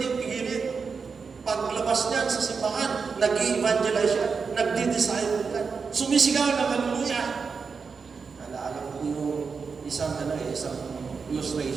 pigilin. Paglabas niyan sa simbahan, nag-i-evangelize siya, nagdi-disciple yan. Sumisigaw ng hallelujah. Naalala ko yung isang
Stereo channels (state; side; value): quieter; left; 5.3 dB